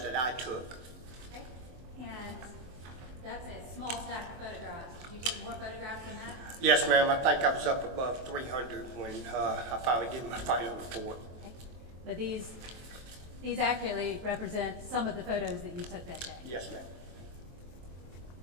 I took. Okay. And that's a small stack of photographs. Did you take more photographs than that? Yes, ma'am. I think I was up above 300 when I finally did my final report. Okay. But these accurately represent some of the photos that you took that day. Yes, ma'am.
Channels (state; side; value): late; left; 23 ms